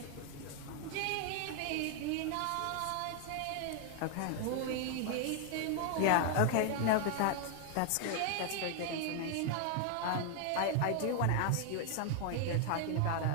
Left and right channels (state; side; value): different; both; correlation 0.00